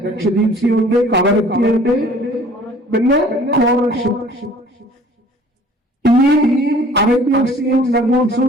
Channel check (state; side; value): normal; both; correlation 0.51